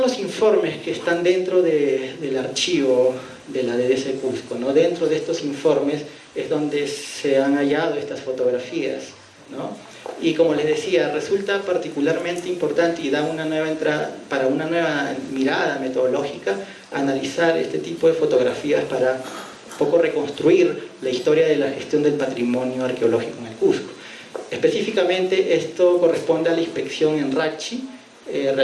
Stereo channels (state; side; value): identical; both; correlation 1.00